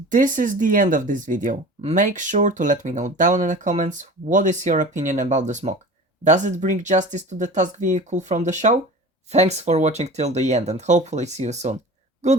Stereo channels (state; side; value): normal; both; correlation 0.38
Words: This is the end of this video. Make sure to let me know down in the comments what is your opinion about this mock. Does it bring justice to the task vehicle from the show? Thanks for watching till the end and hopefully see you soon.